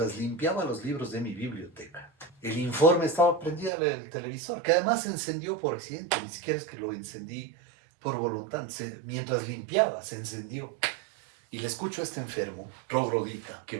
limpiaba los libros de mi biblioteca, el informe estaba prendido el televisor, que además se encendió por accidente, ni siquiera es que lo encendí por voluntad, mientras limpiaba se encendió. Y le escucho a este enfermo, troglodita, que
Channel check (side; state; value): left; drops out; at 3.7 s